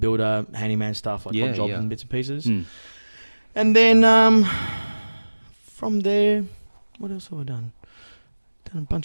handyman stuff like odd jobs and bits and pieces, and then from there, what else have I done? Done a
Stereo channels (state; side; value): inverted; both; correlation -1.00